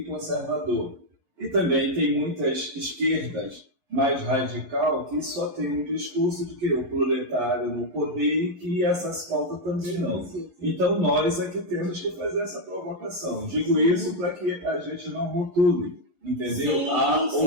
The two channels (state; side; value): late; left; 11 ms